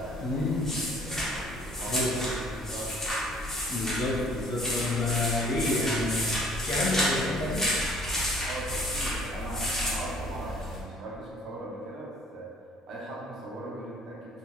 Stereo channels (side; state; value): both; normal; correlation 0.57